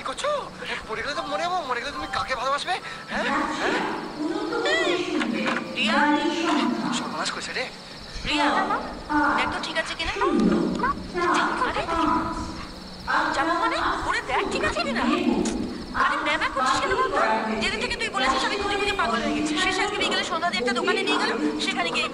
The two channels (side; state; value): both; identical; correlation 1.00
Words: করছো? পড়ে গেলে তো মরে যাবো। মরে গেলে তুমি কাকে ভালোবাসবে? হ্যাঁ হ্যাঁ রিয়া, সর্বনাশ করেছে রে। রিয়া দেখ তো ঠিক আছে কিনা। যাবো মানে ওরে দেখ ঠিক আছে কিনা। আরে ম্যামা করছিস কেন বলতো? যেদিন থেকে তুই বলেছিস আমি খুঁজে খুঁজে পাগল হয়ে গেছি। শেষে আজকে বিকেলে সন্ধ্যা দিয়ে একটা দোকানে নিয়ে গেল, সেখানে গিয়ে